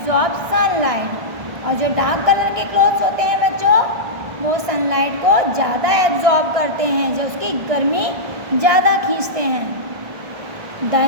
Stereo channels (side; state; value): left; late; 1.6 ms